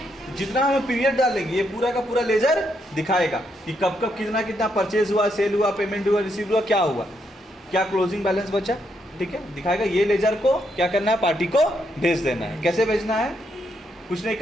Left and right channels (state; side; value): normal; both; correlation 0.77